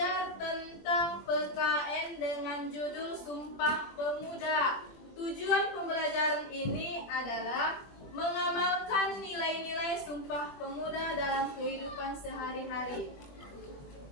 tentang PKN dengan judul Sumpah Pemuda. Tujuan pembelajaran ini adalah mengamalkan nilai-nilai Sumpah Pemuda dalam kehidupan sehari-hari.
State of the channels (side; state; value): right; late; 21 ms